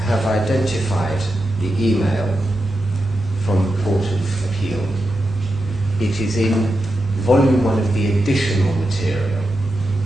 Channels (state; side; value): normal; both; correlation 0.89